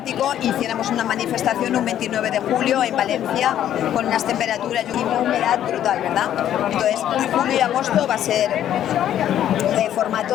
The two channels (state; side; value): quieter; right; 11.1 dB